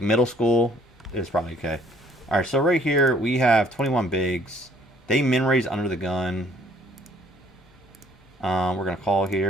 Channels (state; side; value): normal; both; correlation 0.60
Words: middle school is probably okay. All right, so right here we have 21 bigs. They min raise under the gun. We're gonna call